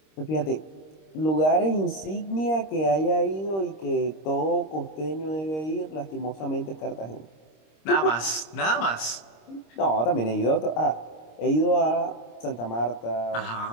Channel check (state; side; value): late; right; 26 ms